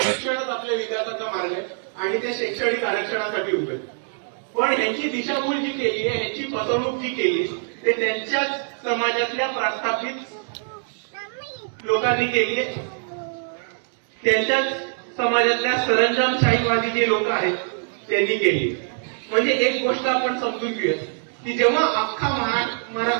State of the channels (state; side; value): silent; left; digital silence